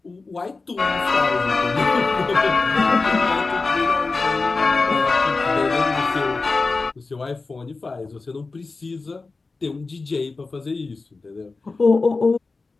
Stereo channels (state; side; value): quieter; right; 3.9 dB